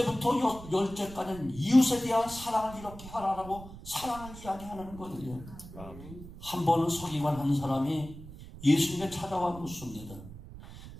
열째까지는 이웃에 대한 사랑을 이렇게 하라라고 사랑을 이야기하는 거예요. 한 번은 서기관 한 사람이 예수님께 찾아와 묻습니다.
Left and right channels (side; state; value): right; noise; rumble, 15 dB below the sound